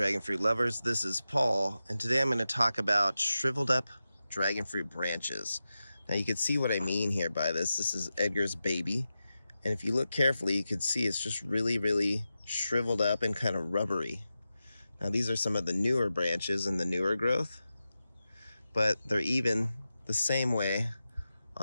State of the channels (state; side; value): inverted; both; correlation -0.92